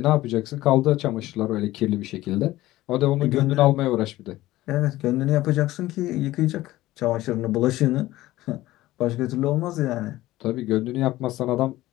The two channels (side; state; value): right; quieter; 16.6 dB